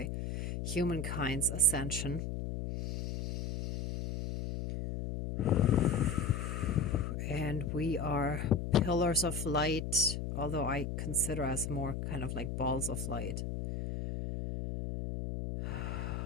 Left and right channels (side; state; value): left; noise; hum, 3 dB below the sound